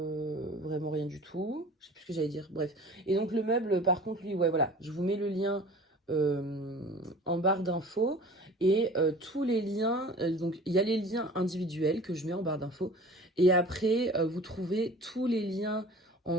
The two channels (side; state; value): both; normal; correlation 0.43